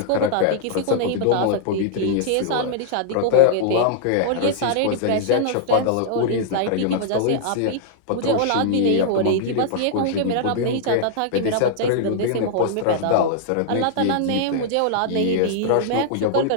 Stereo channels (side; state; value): both; different; correlation -0.01